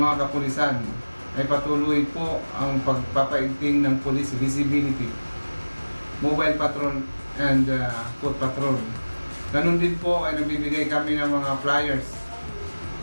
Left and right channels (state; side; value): inverted; both; correlation -1.00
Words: kapulisan ay patuloy po ang pagpapaigting ng police visibility, mobile patrol and foot patrol. Ganun din po ay nagbibigay kami ng mga flyers